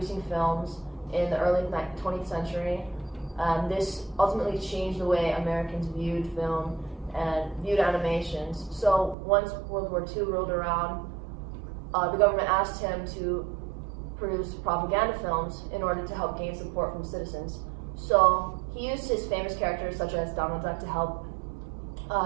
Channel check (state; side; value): drops out; left; at 9.2 s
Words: films in the early 20th century. This ultimately changed the way Americans viewed film and viewed animations. So once World War II rolled around, the government asked him to produce propaganda films in order to help gain support from citizens. So he used his famous characters such as Donald Duck to help